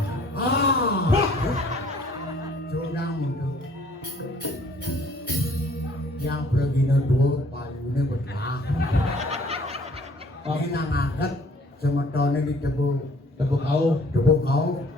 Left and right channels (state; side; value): normal; both; correlation 0.57